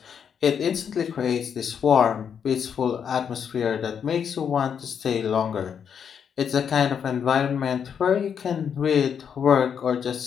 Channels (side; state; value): right; quieter; 7.5 dB